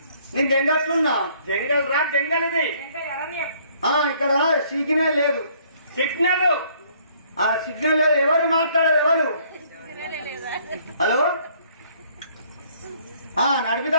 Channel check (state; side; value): inverted; both; correlation -0.62